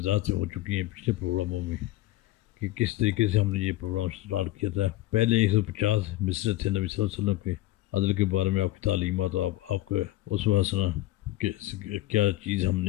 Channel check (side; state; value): right; quieter; 16.3 dB